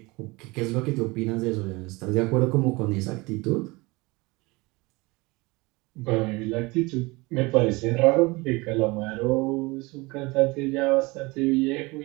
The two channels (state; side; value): quieter; left; 23.9 dB